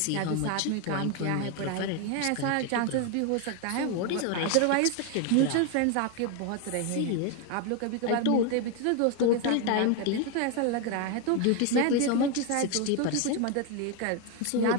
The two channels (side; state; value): both; different; correlation 0.01